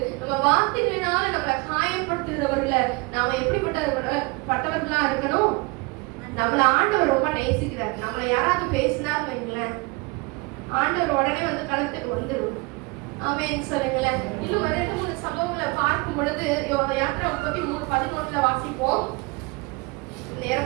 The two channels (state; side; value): quieter; left; 27.5 dB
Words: நம்ம வார்த்தைகளினால நம்மள காயப்படுத்துகிறவர்கள நாம எப்படிப்பட்டவர்களா இருக்கணும். நம்மள ஆண்டவர் ரொம்ப நேசிக்கிறார். நம்மள யாராவது பேசினார் வைங்களேன், ஆண்டவர் உடனே வந்து களத்துக்கு வந்துடும். ஆமென் சொல்லுங்களேன். இன்னும் 2-3 சம்பவங்களை பார்க்கும் பொழுது யாத்திரை 33:11 வாசிப்போம்.